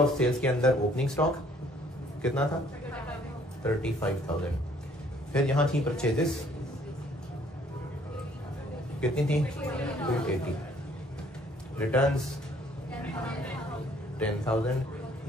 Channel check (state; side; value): normal; both; correlation 0.61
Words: सेल्स के अंदर ओपनिंग स्टॉक कितना था? 35,000। फिर यहां थी परचेजेस कितनी थी? 280। रिटर्न्स 10,000